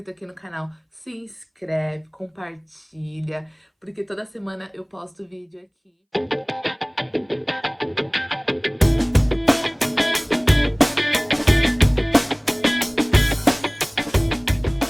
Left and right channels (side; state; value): both; identical; correlation 1.00